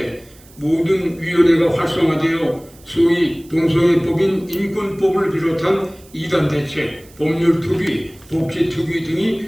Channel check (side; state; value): right; noise; hiss, 26 dB below the sound